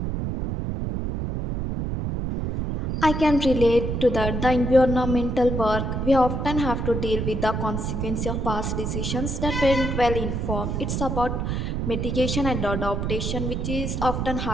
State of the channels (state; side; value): noise; right; rumble, 2 dB below the sound